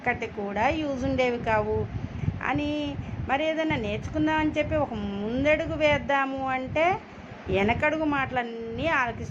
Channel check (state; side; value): identical; both; correlation 1.00